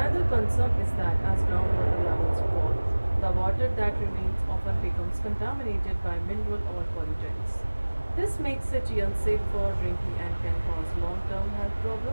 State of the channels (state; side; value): inverted; both; correlation -1.00